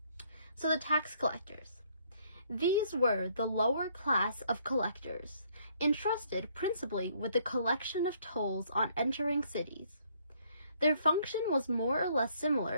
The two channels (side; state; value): both; inverted; correlation -0.65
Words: So the tax collectors. These were the lower class of collectors, entrusted principally with the collection of tolls on entering cities. Their function was more or less